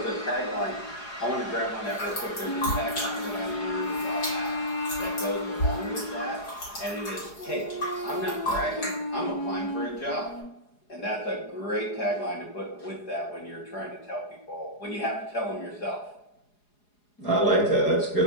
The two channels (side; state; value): right; late; 4.8 ms